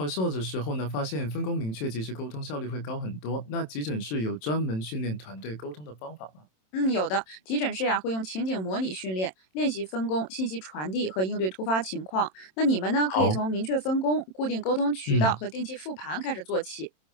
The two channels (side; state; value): right; late; 27 ms